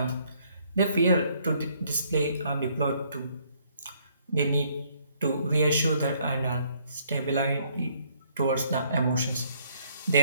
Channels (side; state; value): both; inverted; correlation -0.66